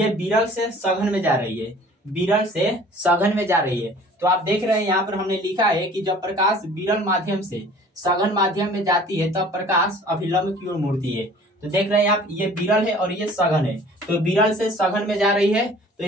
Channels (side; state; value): both; normal; correlation 0.49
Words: विरल से सघन में जा रही है, विरल से सघन में जा रही है। तो आप देख रहे हैं यहाँ पर हमने लिखा है कि जब प्रकाश विरल माध्यम से सघन माध्यम में जाती है तब प्रकाश अभिलंब की ओर मुड़ती है। तो देख रहे हैं आप, ये विरल है और ये सघन है। तो विरल से सघन में जा रही है, तो